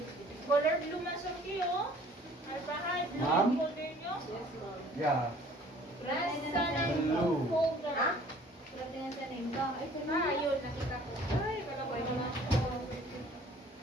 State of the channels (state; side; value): normal; both; correlation 0.53